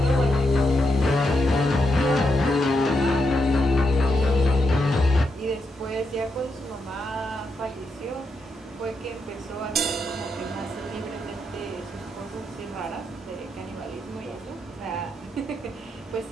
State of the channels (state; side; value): normal; both; correlation 0.83